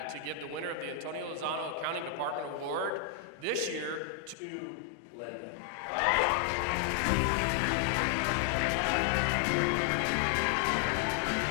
to give the winner of the Antonio Lozano Accounting Department Award this year to Lynd.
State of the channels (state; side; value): drops out; right; at 4.4 s